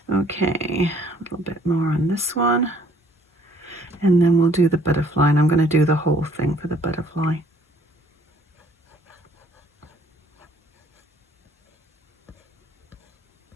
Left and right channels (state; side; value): normal; both; correlation 0.60